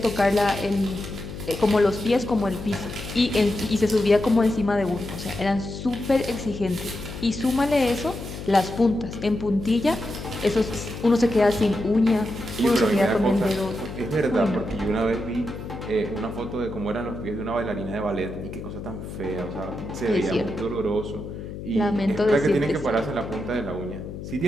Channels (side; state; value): left; noise; hum, 9 dB below the sound